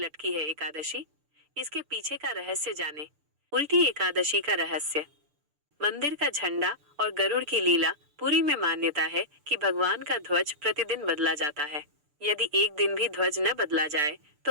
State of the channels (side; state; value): left; late; 6.8 ms